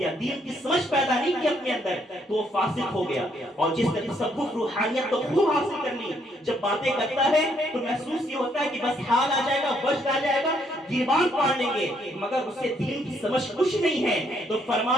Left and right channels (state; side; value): normal; both; correlation 0.70